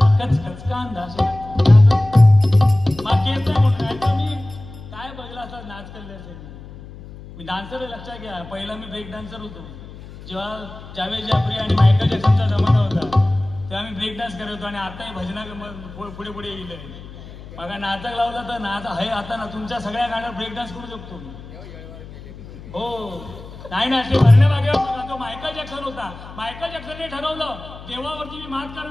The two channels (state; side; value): noise; left; hum, 16 dB below the sound